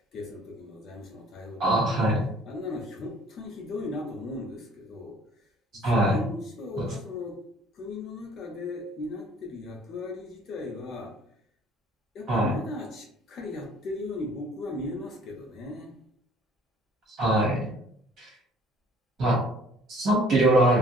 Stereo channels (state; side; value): normal; both; correlation 0.55